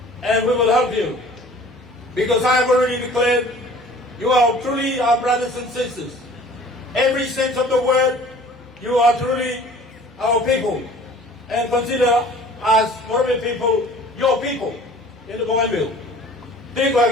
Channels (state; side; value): normal; both; correlation 0.48